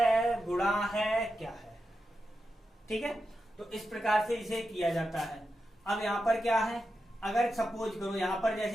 गुणा है, क्या है। ठीक है, तो इस प्रकार से इसे किया जाता है। अब यहां पर क्या है, अगर सपोज करो यहां पर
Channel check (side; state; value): both; normal; correlation 0.89